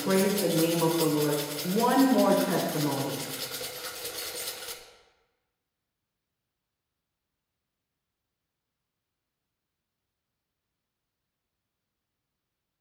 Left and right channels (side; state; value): both; identical; correlation 1.00